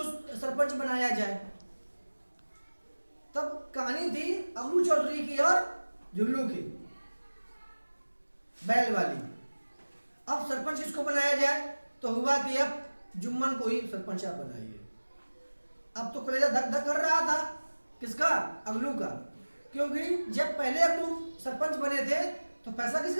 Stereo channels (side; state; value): both; inverted; correlation -1.00